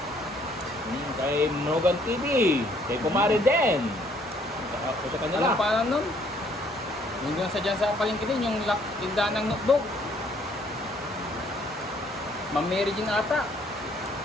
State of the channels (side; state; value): both; normal; correlation 0.64